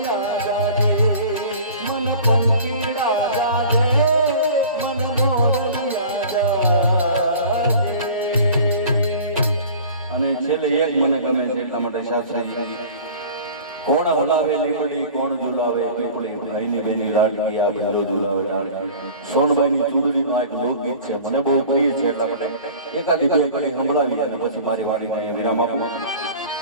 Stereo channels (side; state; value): both; inverted; correlation -0.43